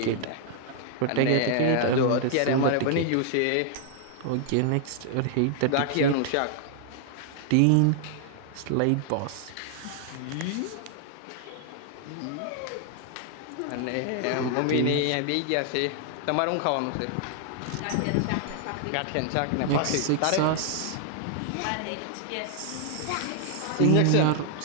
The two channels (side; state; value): both; different; correlation 0.00